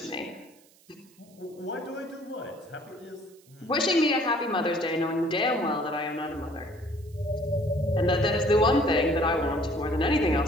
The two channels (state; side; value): noise; right; hiss, 29 dB below the sound